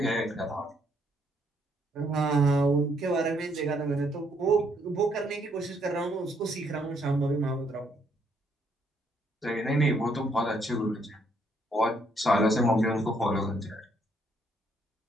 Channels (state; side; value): normal; both; correlation 0.71